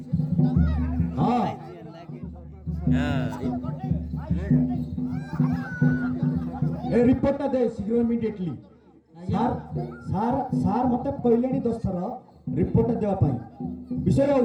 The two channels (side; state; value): both; identical; correlation 1.00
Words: ହଁ ଏ ରିପୋର୍ଟଟା ଦେ ଶୀଘ୍ର ଇମିଡିଏଟଲି ସାର୍ ସାର୍ ସାର୍ ମୋତେ କହିଲେଣି 10 ଥର ରିପୋର୍ଟଟା ଦେବା ପାଇଁ ବିଷୟ ଆଉ